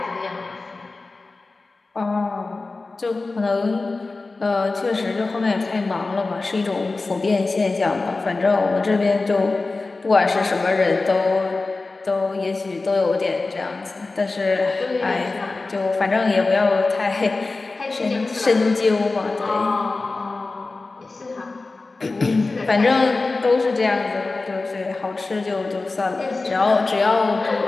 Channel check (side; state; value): right; quieter; 3.6 dB